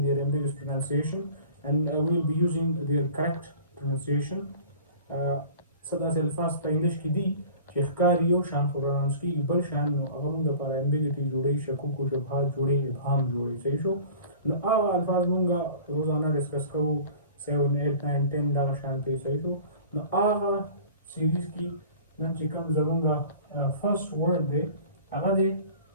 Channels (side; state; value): both; inverted; correlation -0.44